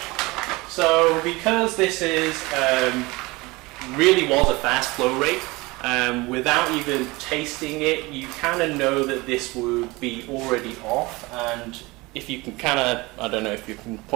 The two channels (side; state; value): left; quieter; 22.9 dB